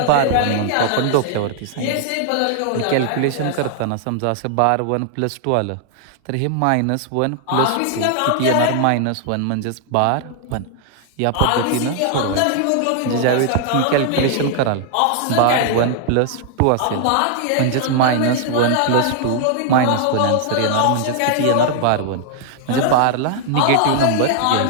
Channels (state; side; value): different; both; correlation 0.00